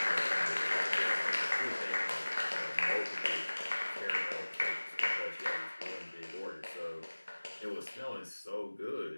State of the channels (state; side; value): inverted; both; correlation -1.00